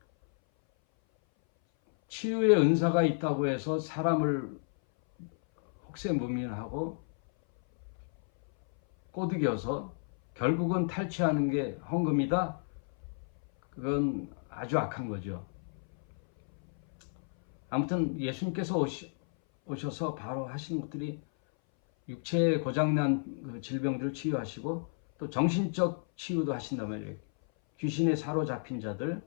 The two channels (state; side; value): silent; right; 57 dB below the other